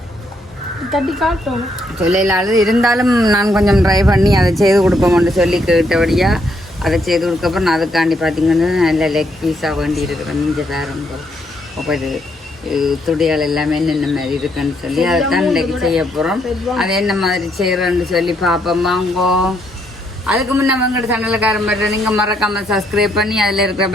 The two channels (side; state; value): both; normal; correlation 0.74